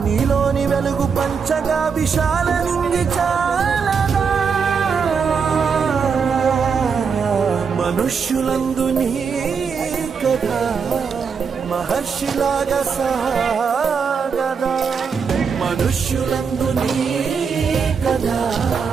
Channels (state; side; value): quieter; left; 6.0 dB